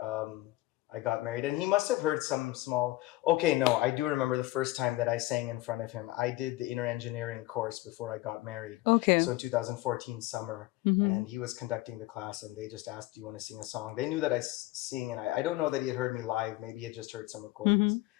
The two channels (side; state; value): right; quieter; 18.5 dB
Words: I got married, and he must have heard some small. Okay, no, I do remember the first time that I sang in front of him. I did the inner engineering course before I got married. Okay. So in 2014 summer, and he was conducting the class, and they just asked, "Do you want to sing a song?" They knew that I sing, and I don't know that he had heard me live. Maybe he had just heard some recordings.